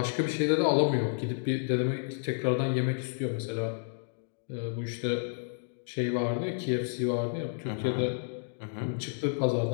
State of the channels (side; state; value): right; silent; digital silence